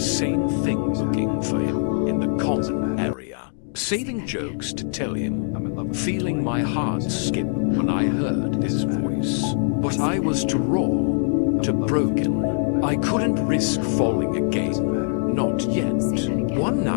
same thing, looking for him in the common area, saving jokes to tell him, feeling my heart skip when I heard his voice. But I was too raw, too broken. I couldn't risk falling again, not yet. One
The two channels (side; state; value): right; silent; digital silence